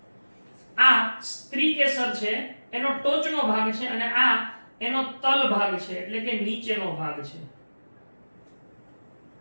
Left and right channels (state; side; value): inverted; both; correlation -1.00